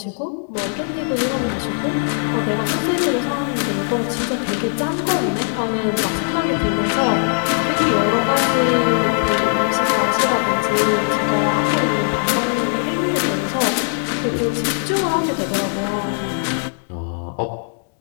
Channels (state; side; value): silent; right; 66 dB below the other